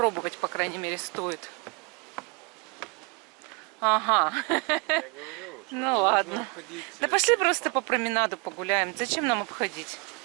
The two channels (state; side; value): quieter; left; 31.9 dB